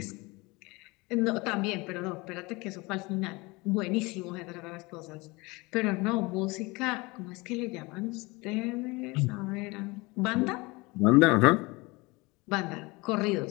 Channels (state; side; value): quieter; right; 24.5 dB